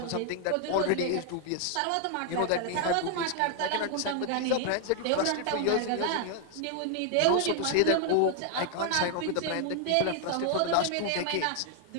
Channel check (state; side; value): different; both; correlation 0.00